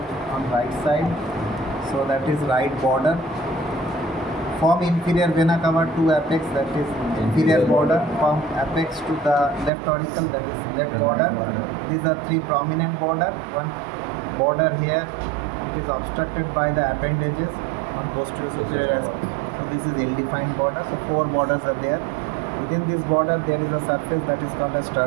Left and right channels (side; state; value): left; drops out; at 9.7 s